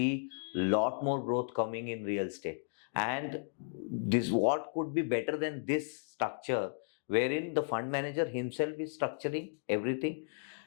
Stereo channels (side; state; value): right; silent; digital silence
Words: lot more growth coming in real estate. And this, what could be better than this structure, wherein the fund manager himself is structuring everything,